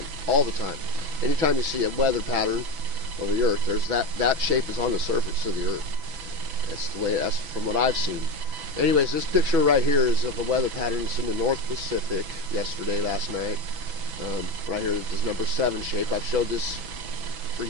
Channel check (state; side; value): late; left; 6.1 ms